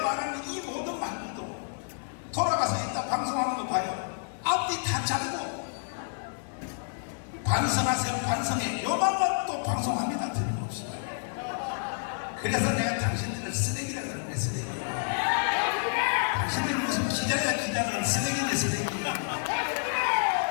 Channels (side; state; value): right; silent; 58 dB below the other